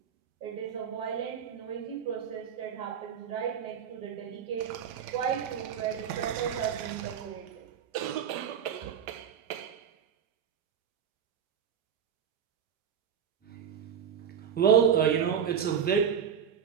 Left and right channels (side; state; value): left; quieter; 8.1 dB